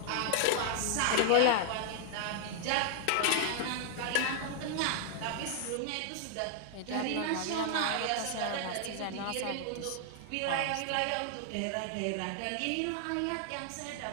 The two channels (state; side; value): different; both; correlation 0.00